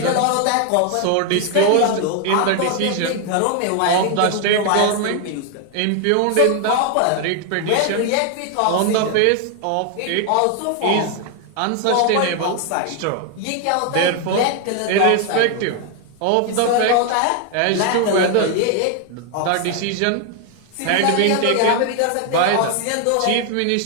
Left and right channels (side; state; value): both; different; correlation 0.01